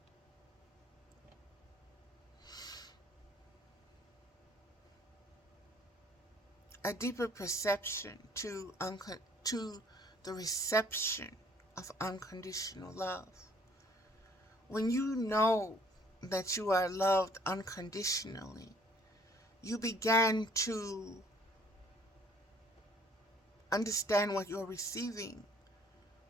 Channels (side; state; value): both; normal; correlation 0.58